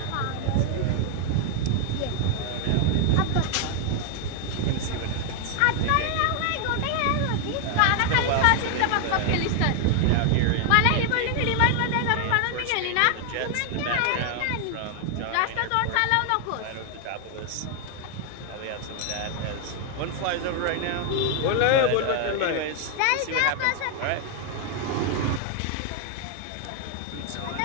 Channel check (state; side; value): different; both; correlation 0.00